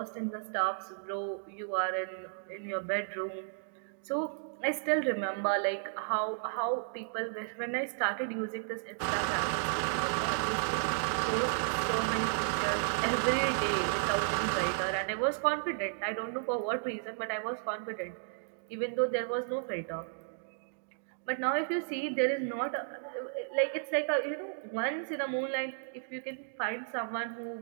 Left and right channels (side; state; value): left; silent; digital silence